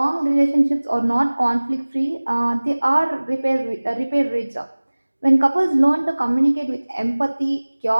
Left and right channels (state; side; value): inverted; both; correlation -1.00